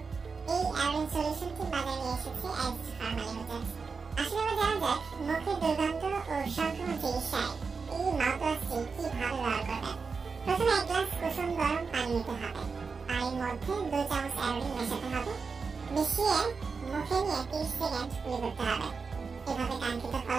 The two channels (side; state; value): left; quieter; 5.0 dB